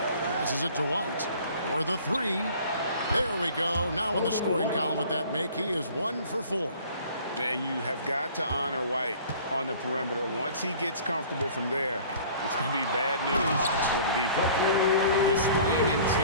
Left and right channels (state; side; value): inverted; both; correlation -0.49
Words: Passes it to White for the 3. There we go. Now in the scoring column with that make, he is 1 for 4. And you have got to honor White on the perimeter. Once he gets comfortable from there, it's going to be bad news for the defense. Displaying